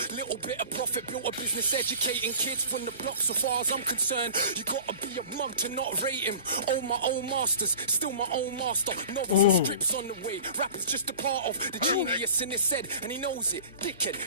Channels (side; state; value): both; inverted; correlation -0.41